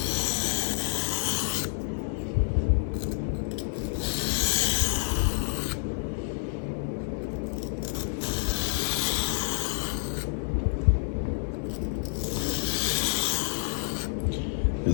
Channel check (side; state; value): right; silent; 59 dB below the other